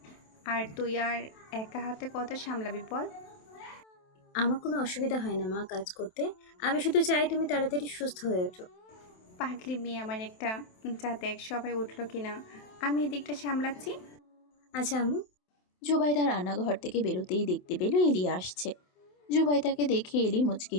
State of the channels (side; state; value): right; late; 27 ms